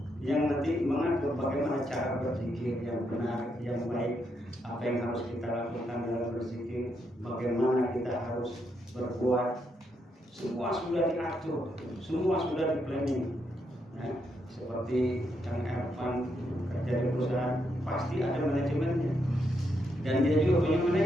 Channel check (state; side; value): normal; both; correlation 0.79